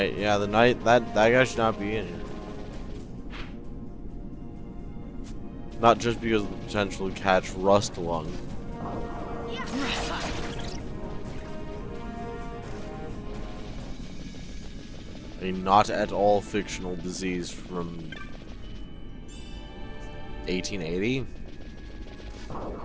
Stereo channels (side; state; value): both; identical; correlation 1.00